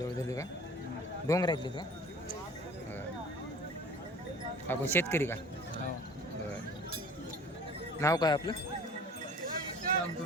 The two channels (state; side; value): normal; both; correlation 0.45